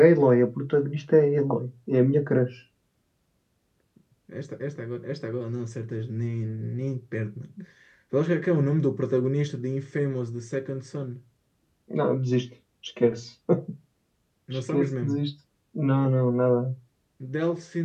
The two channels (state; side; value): identical; both; correlation 1.00